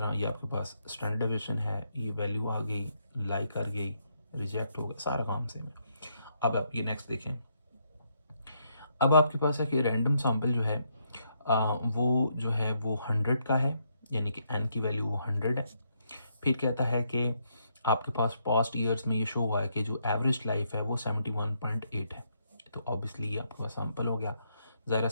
ये आपके पास स्टैंडर्ड डिवीजन है, ये वैल्यू आ गई, लाइक कर गई, रिजेक्ट हो गया, सारा काम सेम है। अब आप ये नेक्स्ट देखें। अब आपके पास है कि रैंडम सैम्पल जो है वो जो है वो 100 का है, यानी कि एन की वैल्यू वो 100 है। फिर कहता है कि आपके पास पास्ट ईयर्स में ये शो हुआ है कि जो एवरेज लाइफ है वो 71.8 है। तो ऑब्वियसली ये आपके पास सैम्पल हो गया। ज़रा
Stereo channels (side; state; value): both; inverted; correlation -0.76